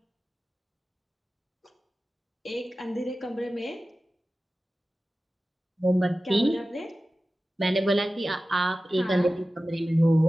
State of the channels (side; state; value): both; normal; correlation 0.95